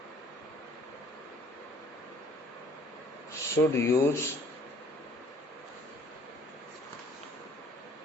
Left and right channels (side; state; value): both; normal; correlation 0.56